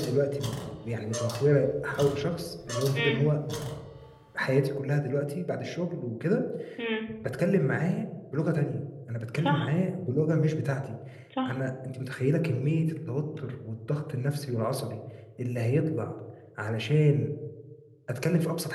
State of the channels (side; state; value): both; identical; correlation 1.00